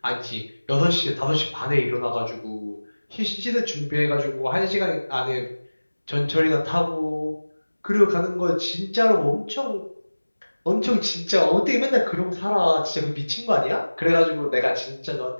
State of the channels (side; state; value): both; inverted; correlation -1.00